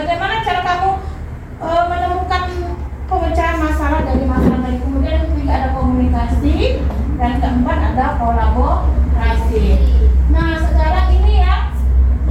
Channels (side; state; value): both; identical; correlation 1.00